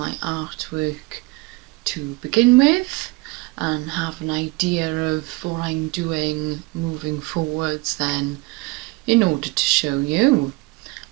artwork to begin with, and have an idea of what I'm doing moving forwards then, in order to show you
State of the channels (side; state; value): left; quieter; 24.9 dB